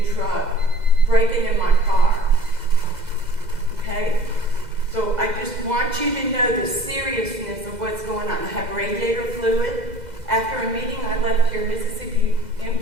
truck breaking in my car. Okay? So I just want you to know the seriousness of what's going on. I have radiator fluid. After a meeting, I left here Mississippi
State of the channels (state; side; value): late; left; 2.0 ms